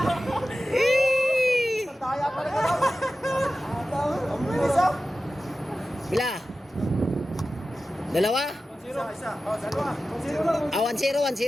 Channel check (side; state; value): both; normal; correlation 0.94